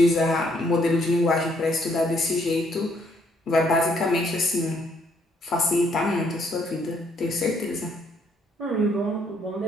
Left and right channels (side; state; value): both; normal; correlation 0.69